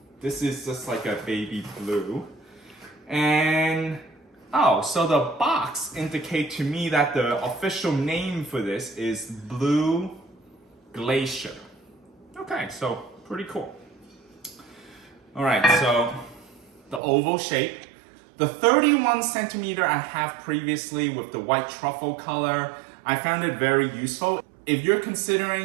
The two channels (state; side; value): drops out; left; at 17.0 s